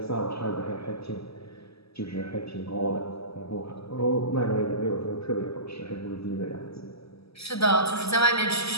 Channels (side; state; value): right; late; 0.78 ms